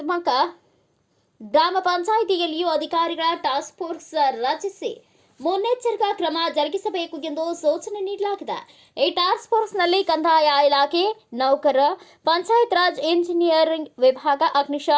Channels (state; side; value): identical; both; correlation 1.00